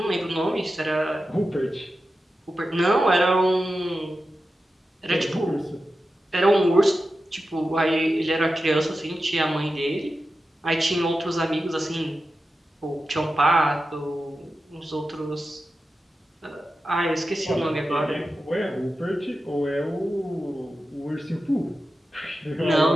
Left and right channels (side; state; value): both; normal; correlation 0.92